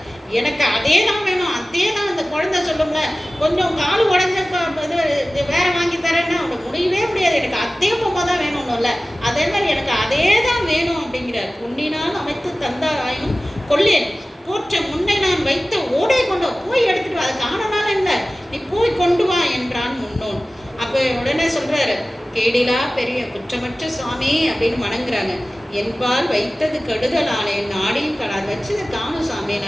எனக்கு அதே தான் வேணும், அதே தான். அந்த குழந்தை சொல்லுங்க, கொஞ்சம் கால் உடஞ்சப்ப இது வேற வாங்கி தரேன்னா அவங்க முடியவே முடியாது, எனக்கு அதே பொம்மை தான் வேணும்ல, அதே மாதிரி எனக்கு அதே தான் வேணும் அப்படிங்கிறார். பொன்னினால் அமைத்து தந்தார் ஆயினும் கொள்ளேன், போற்ற முன்னை நான் வைத்த ஓடை கொண்டு போய் எடுத்துட்டு வா, அது காணனால இல்லை, நீ போய் கொண்டு வா என்றான் முன்னோன். அப்போ உடனே சொல்றாரு, கேடிலா பெரிய குற்றமற்ற சுவாமி அப்படின்னு வணங்குறாங்க. என்பால் வைத்தது கெடுதலானே, நாடியும் கடாது வச்சதை காணும் சாமி,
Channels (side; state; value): both; normal; correlation 0.97